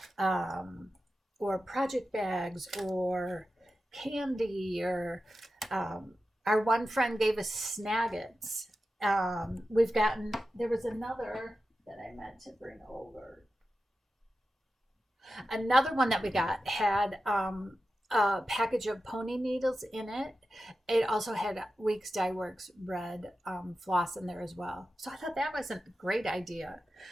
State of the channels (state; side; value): normal; both; correlation 0.92